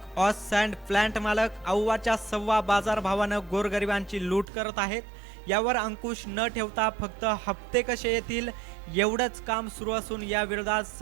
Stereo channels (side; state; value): left; drops out; at 4.5 s